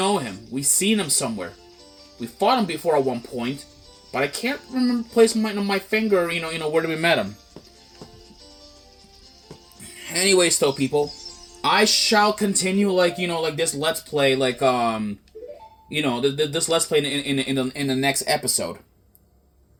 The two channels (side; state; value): both; identical; correlation 1.00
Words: him. We've seen him somewhere. We fought him before at one point, but I can't remember placing my finger, where we met him. Anyways, though, people, I shall continue like this Let's Play, this Let's Play in the next episode.